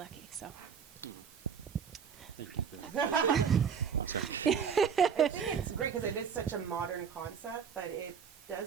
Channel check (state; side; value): quieter; left; 6.9 dB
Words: So. Thank you for that. Oh, sorry. I think it's great because it is such a modern concept, but it